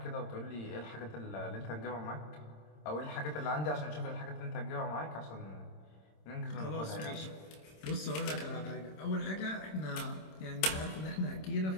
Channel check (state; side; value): late; right; 26 ms